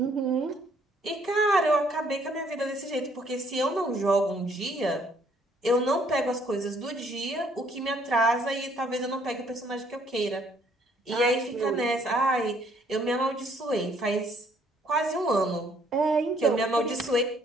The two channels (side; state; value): both; normal; correlation 0.65